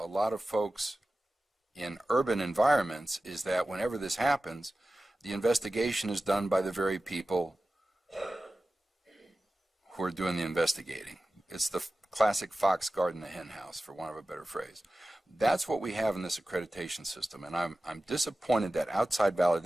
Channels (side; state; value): both; normal; correlation 0.95